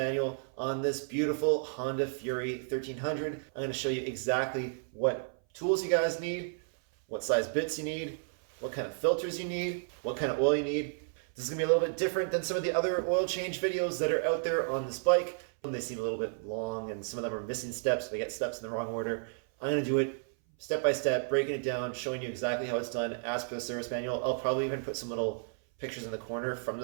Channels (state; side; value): silent; left; 56 dB below the other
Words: on this beautiful Honda Fury 1300. I'm going to show you exactly what tools you guys need, what size bits you need, what kind of filters you need, what kind of oil you need. This is going to be a little bit different than some of the other oil change videos that are out there on this bike. They seem a little bit long and some of them are missing steps. They get steps in the wrong order. I'm going to do it step by step, breaking it down, showing you exactly how it's done as per the service manual. I'll probably even put some little pictures in the corner from